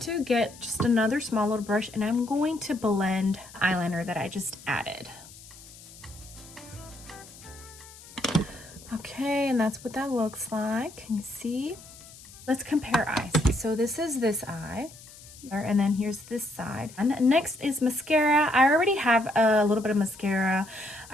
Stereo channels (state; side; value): noise; left; hiss, 19 dB below the sound